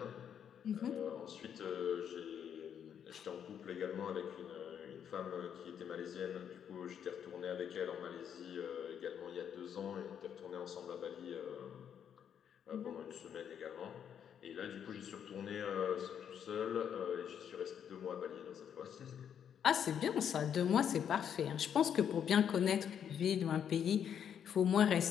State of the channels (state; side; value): quieter; right; 8.5 dB